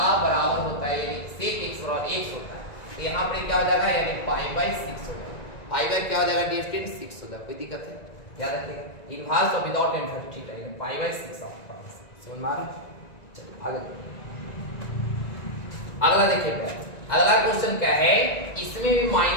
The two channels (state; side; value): late; right; 1.9 ms